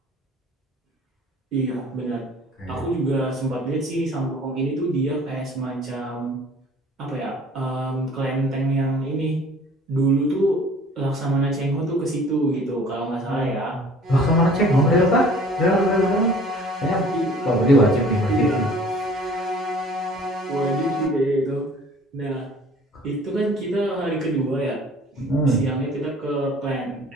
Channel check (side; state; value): both; normal; correlation 0.50